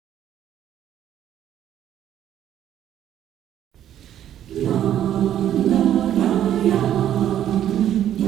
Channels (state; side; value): quieter; left; 11.0 dB